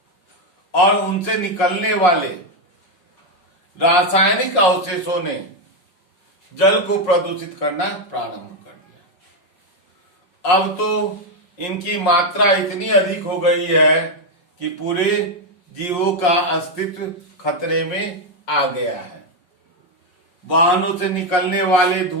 और उनसे निकलने वाले रासायनिक अवशेषों ने जल को प्रदूषित करना प्रारंभ कर दिया। अब तो इनकी मात्रा इतनी अधिक हो गई है कि पूरे जीवों का अस्तित्व खतरे में आ गया है। वाहनों से निकलने वाले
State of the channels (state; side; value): late; right; 5.6 ms